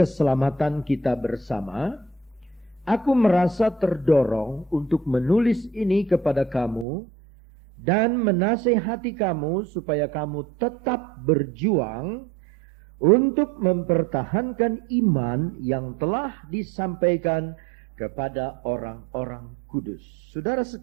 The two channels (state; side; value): drops out; left; at 6.9 s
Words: kita bersama, aku merasa terdorong untuk menulis ini kepada kamu dan menasihati kamu supaya kamu tetap berjuang untuk mempertahankan iman yang telah disampaikan kepada orang-orang kudus. Saudara